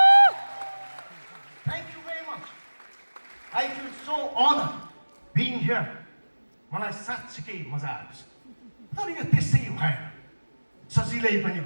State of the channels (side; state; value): both; inverted; correlation -1.00